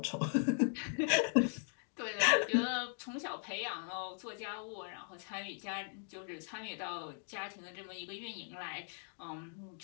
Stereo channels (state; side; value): silent; right; 52 dB below the other